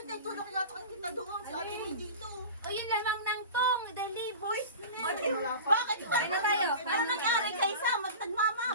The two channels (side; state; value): both; inverted; correlation -0.33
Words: naitulong ko yata kay Tita Doon. Si Ate May dito. O yun lamang ng tong, dali boys. Bakit ito? Kain na tayo. Ano nangyari kay Sam? Nagmama.